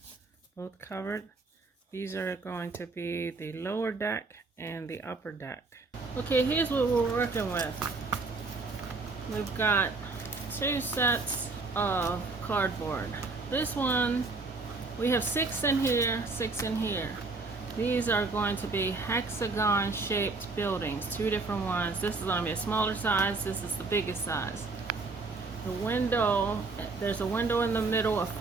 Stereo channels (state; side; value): quieter; left; 3.8 dB